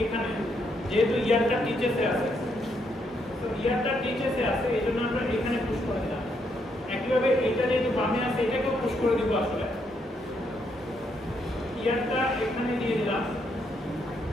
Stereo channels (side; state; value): both; normal; correlation 0.76